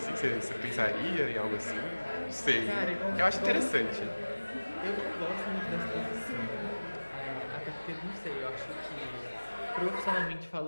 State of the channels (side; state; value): both; inverted; correlation -1.00